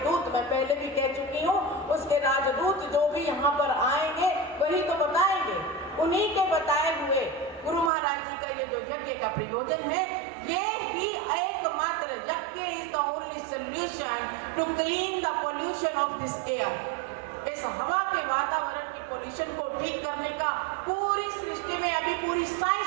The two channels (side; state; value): left; drops out; at 7.9 s